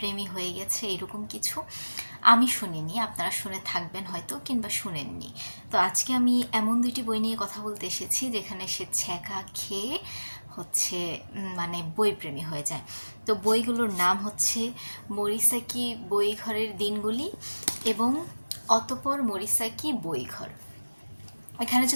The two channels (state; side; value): inverted; both; correlation -1.00